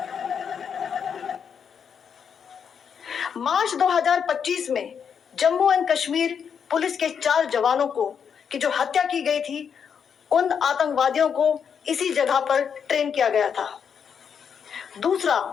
मार्च 2025 में जम्मू एंड कश्मीर पुलिस के 4 जवानों को की जो हत्या की गई थी, उन आतंकवादियों को इसी जगह पर ट्रेन किया गया था। दूसरा,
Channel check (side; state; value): right; quieter; 7.2 dB